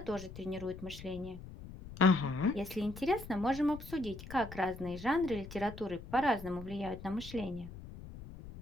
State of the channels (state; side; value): noise; left; rumble, 13 dB below the sound